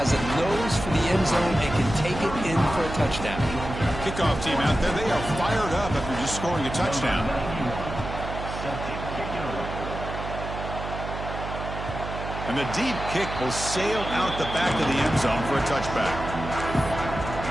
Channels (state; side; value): noise; right; hum, 7 dB below the sound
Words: a nose for the end zone and can take it in for a touchdown. Kickoff team out there. They are fired up after just scoring a touchdown. And the deep kick will sail out the back of the end zone for a touchback.